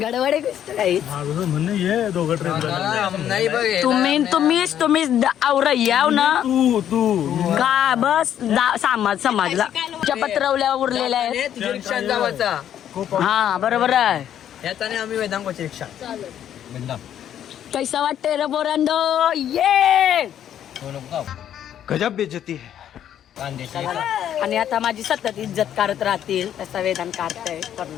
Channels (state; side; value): quieter; right; 10.3 dB